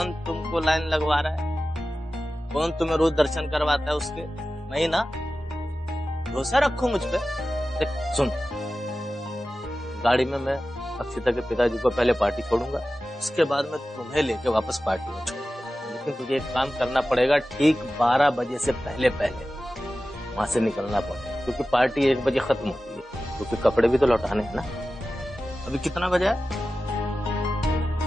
तुमको लाइन लगवा रहा है? कौन तुम्हें रोज दर्शन करवाता है उसके? नहीं ना? भरोसा रखो मुझ पे। देख सुन, गाड़ी में मैं अक्षिता के पिताजी को पहले पार्टी छोड़ूंगा, उसके बाद मैं तुम्हें लेके वापस पार्टी में छोड़ूंगा। लेकिन तुझे एक काम करना पड़ेगा, ठीक 12 बजे से पहले पहले वहां से निकलना पड़ेगा, क्योंकि पार्टी 1 बजे खत्म होती है। क्योंकि कपड़े भी तो लौटाने हैं ना। अभी कितना बजा है?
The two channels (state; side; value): normal; both; correlation 0.95